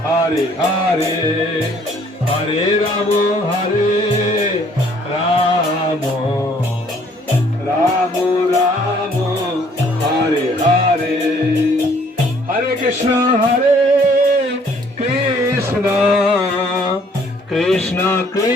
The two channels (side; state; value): both; normal; correlation 0.61